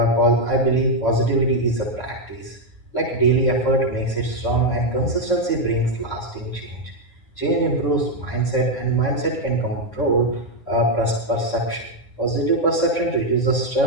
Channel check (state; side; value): late; right; 9.7 ms